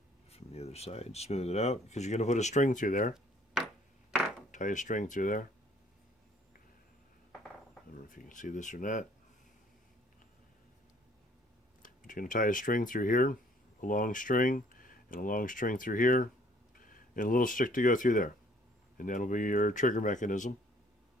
From the other side, smooth it out, because you're going to put a string through there. Tie a string through there. I don't know if you can see this or not. But you're going to tie a string through here, a long string, and a long string through here, and a little stick to go through there. And that'll be your trigger mechanism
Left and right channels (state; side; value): normal; both; correlation 0.59